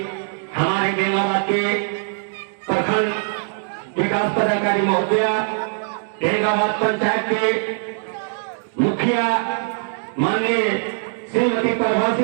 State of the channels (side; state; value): left; silent; digital silence